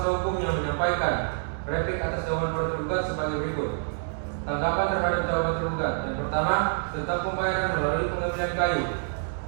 hukumnya replik atas jawaban para tergugat sebagai berikut. Tanggapan terhadap jawaban tergugat. Yang pertama, tentang pembayaran melalui pengambilan kayu.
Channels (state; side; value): silent; left; 60 dB below the other